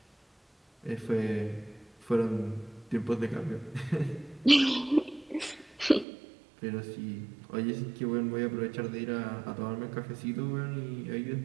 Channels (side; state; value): left; drops out; at 6.1 s